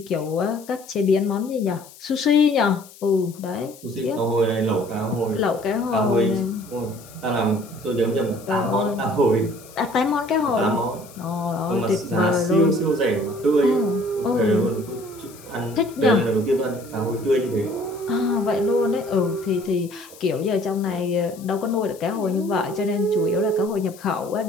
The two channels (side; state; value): left; noise; hiss, 21 dB below the sound